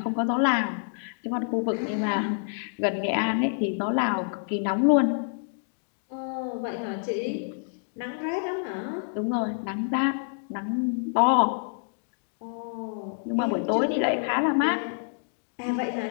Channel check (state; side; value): silent; right; digital silence